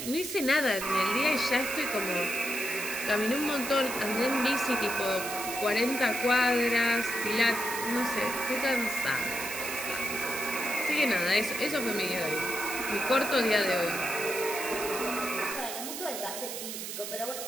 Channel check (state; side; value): noise; right; hiss, 6 dB below the sound